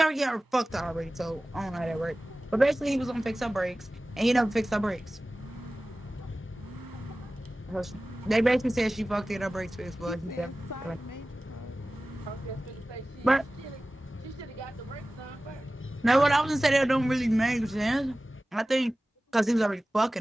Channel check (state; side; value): normal; both; correlation 0.97